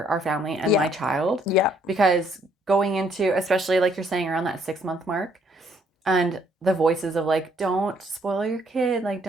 our family and my child. Yeah. Because going into, especially like you're saying around that 6-month mark, and the voices of like, don't spoil your kid, like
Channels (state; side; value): normal; both; correlation 0.67